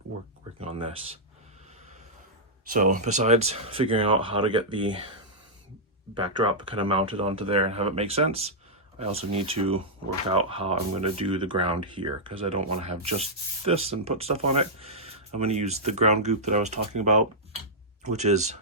working on this. So besides figuring out how to get the backdrop kind of mounted onto there and have it make sense, I also need to work out how I'm going to do the ground here, because I don't want to have just this and put stuff on it. I'm going to use the ground goop that I was talking about, which is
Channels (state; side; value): normal; both; correlation -0.09